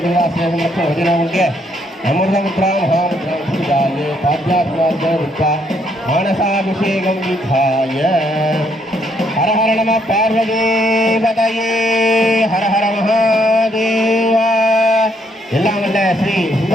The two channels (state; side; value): normal; both; correlation 0.71